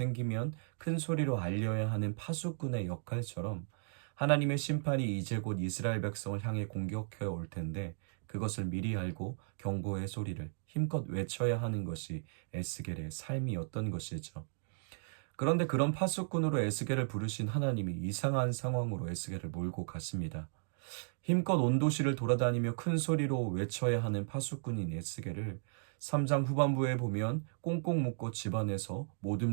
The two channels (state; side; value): silent; left; digital silence